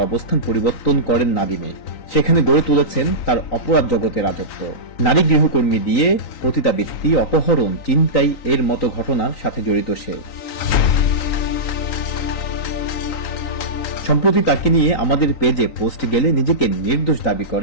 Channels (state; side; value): late; right; 3.9 ms